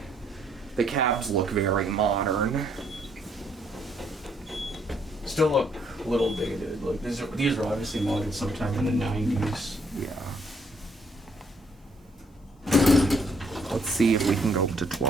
The cabs look very modern. Still look a little dated. Like these were obviously modded sometime in the 90s. Yeah. Let's see if we can go up to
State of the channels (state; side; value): normal; both; correlation 0.69